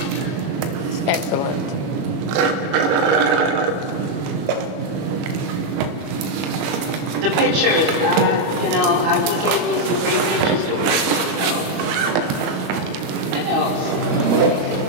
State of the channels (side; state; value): left; late; 21 ms